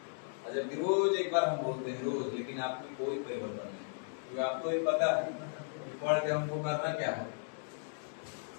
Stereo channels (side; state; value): right; silent; digital silence